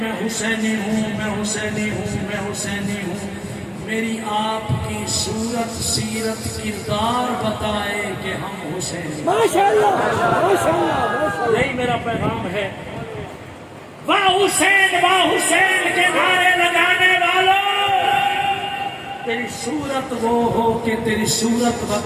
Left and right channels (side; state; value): both; identical; correlation 1.00